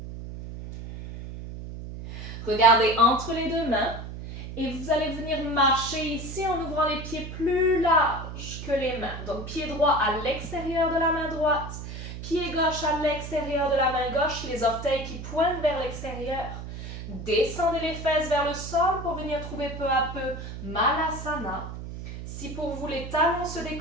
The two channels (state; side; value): noise; right; hum, 9 dB below the sound